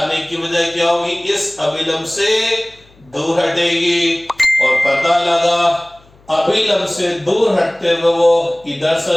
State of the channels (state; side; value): noise; left; hum, 30 dB below the sound